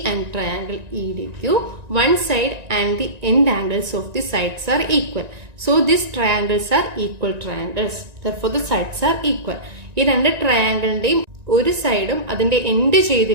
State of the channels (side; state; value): left; late; 1.9 ms